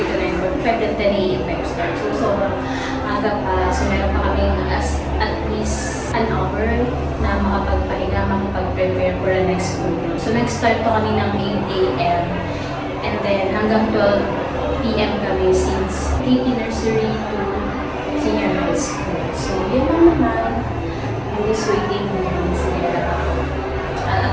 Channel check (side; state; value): both; identical; correlation 1.00